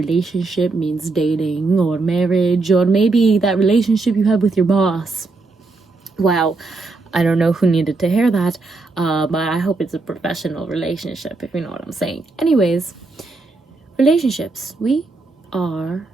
means dating or marriage, or maybe that relationship you have with your boss. Wow, I don't know who needed to hear that, but I hope it's a professional relationship, if you know what I'm saying. Anyways, relationships. We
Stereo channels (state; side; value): quieter; left; 3.6 dB